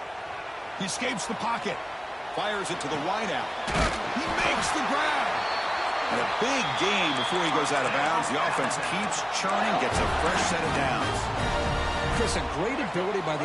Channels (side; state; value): both; identical; correlation 1.00